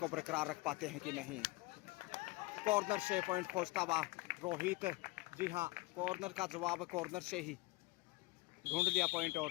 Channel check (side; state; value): right; quieter; 22.1 dB